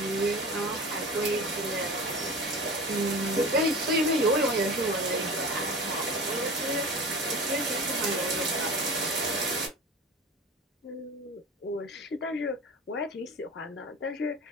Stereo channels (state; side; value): normal; both; correlation 0.34